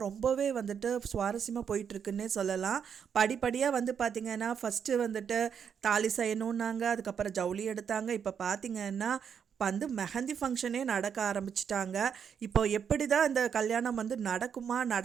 ரொம்பவே வந்துட்டு சுவாரஸ்யமாக போயிட்டுருக்குன்னே சொல்லலாம். படிப்படியாக வந்து பார்த்திங்கன்னா ஃபஸ்ட்டு வந்துட்டு தாலி செய்யணுன்னாங்க, அதுக்கப்புறம் ஜவுளி எடுத்தாங்க. இப்போ பார்த்திங்கன்னா வந்து மெஹந்தி ஃபங்க்ஷனே நடக்க ஆரம்பிச்சிட்டாங்க. இப்போ எப்படி தான் இந்த கல்யாணம் வந்து நடக்குமா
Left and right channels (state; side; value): quieter; left; 7.5 dB